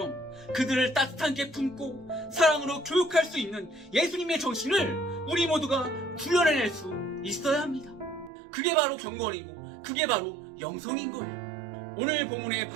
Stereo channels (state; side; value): drops out; left; at 8.3 s